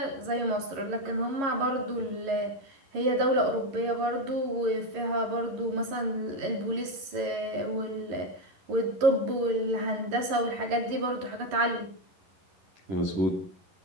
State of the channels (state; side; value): late; left; 11 ms